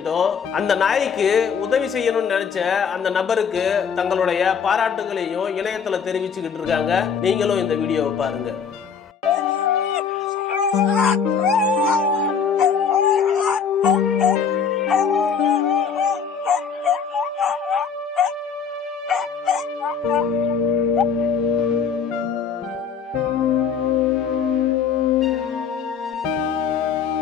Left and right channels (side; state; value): right; quieter; 6.6 dB